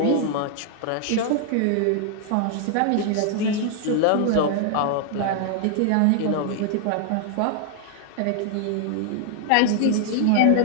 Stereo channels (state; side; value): different; both; correlation 0.00